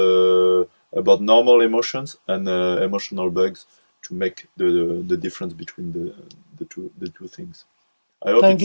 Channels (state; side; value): inverted; both; correlation -1.00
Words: about normal emotions and emotional bugs to make the difference between the two things. I hope Thank